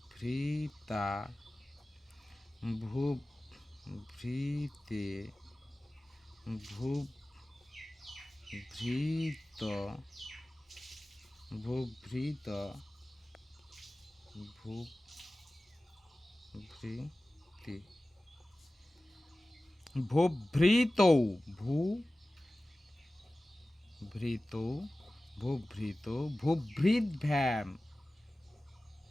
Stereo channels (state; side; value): normal; both; correlation 0.97